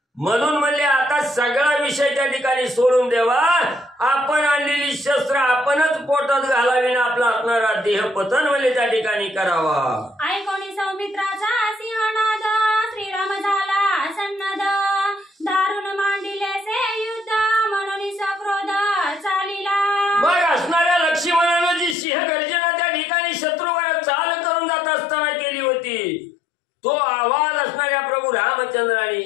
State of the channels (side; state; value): right; drops out; at 22.0 s